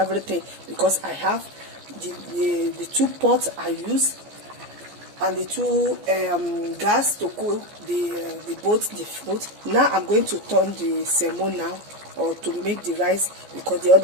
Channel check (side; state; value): left; late; 14 ms